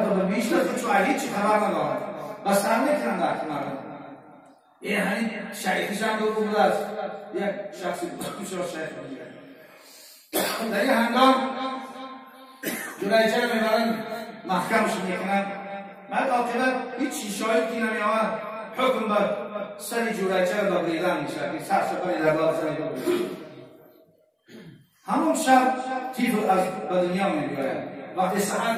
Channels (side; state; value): both; identical; correlation 1.00